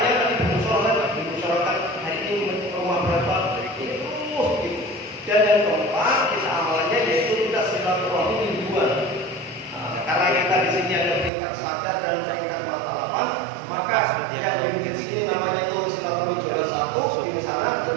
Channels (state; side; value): drops out; left; at 11.3 s